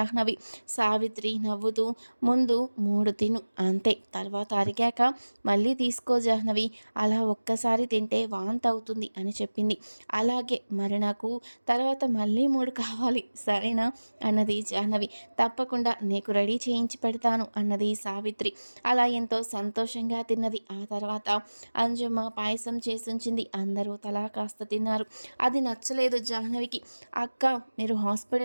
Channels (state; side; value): inverted; both; correlation -1.00